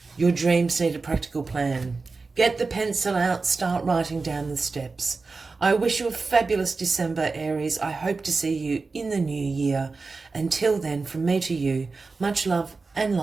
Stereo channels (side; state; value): left; quieter; 4.1 dB